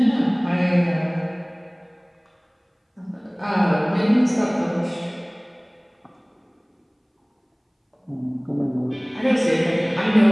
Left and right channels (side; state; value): both; identical; correlation 1.00